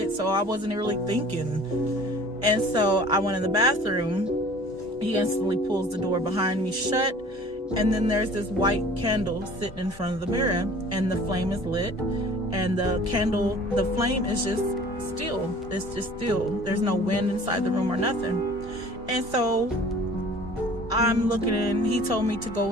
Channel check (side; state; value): both; normal; correlation 0.48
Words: So I wasn't really thinking. And so I went in the bathroom. He instantly pulls the door behind me shut. And then there's this white candle sitting in front of the mirror. And the flame is lit. And the flame is just still. It's just still. There's no wind inside the room or nothing. And so I'm looking in. He told me to